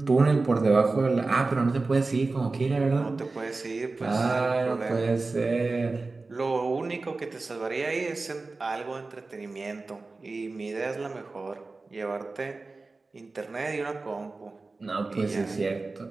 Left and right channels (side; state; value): left; quieter; 3.6 dB